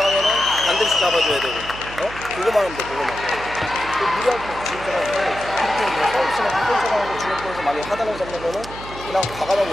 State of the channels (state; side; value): noise; right; hum, 14 dB below the sound